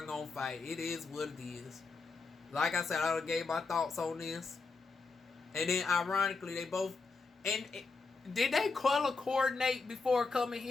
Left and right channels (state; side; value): quieter; right; 4.2 dB